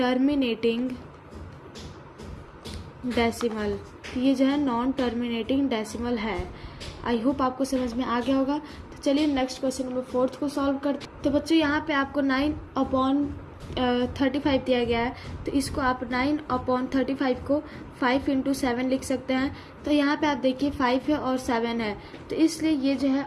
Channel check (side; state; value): both; identical; correlation 1.00